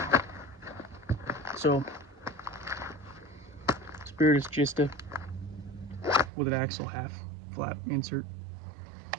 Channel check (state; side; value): drops out; left; at 6.3 s